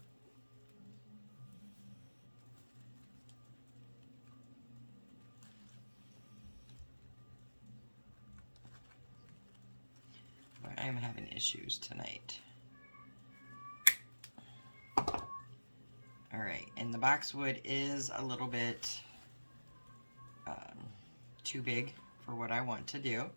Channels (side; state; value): both; inverted; correlation -1.00